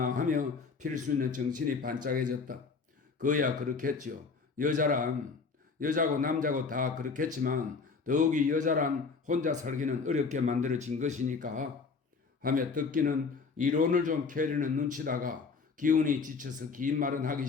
하며 필순이는 정신이 반짝해졌다. 그야 그렇겠지요. 여자고 남자고 다 그렇겠지만 더욱이 여자란 혼자 살기는 어렵게 만들어진 것이니까 하며 덕기는 이론을 좀 캐려는 눈치다가 기운이 지쳐서 긴 말은 하기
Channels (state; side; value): quieter; right; 4.8 dB